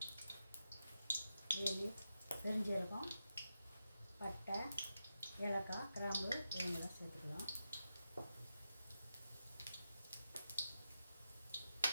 பெருஞ்சீரகம், பட்டை, ஏலக்காய், கிராம்பு இவங்கெல்லாம் சேர்த்துக்கலாம்.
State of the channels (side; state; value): both; inverted; correlation -0.87